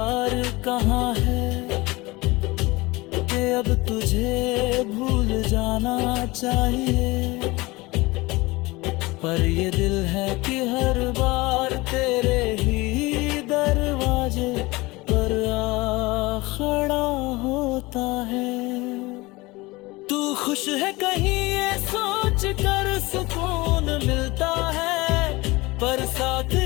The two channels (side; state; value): right; quieter; 22.2 dB